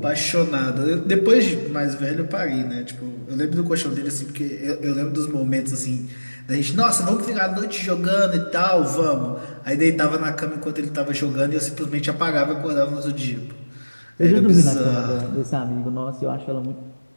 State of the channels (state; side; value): inverted; both; correlation -1.00